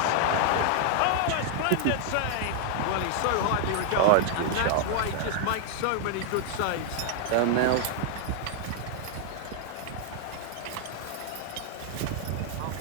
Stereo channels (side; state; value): both; different; correlation 0.00